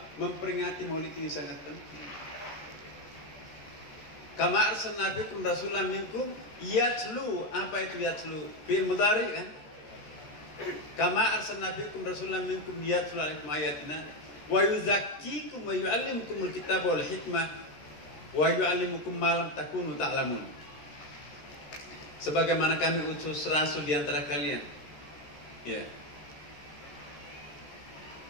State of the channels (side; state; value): right; late; 13 ms